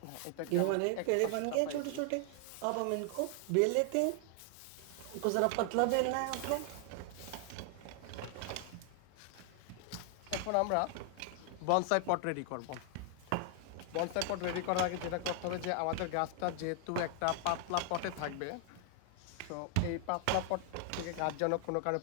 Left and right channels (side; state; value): both; different; correlation 0.00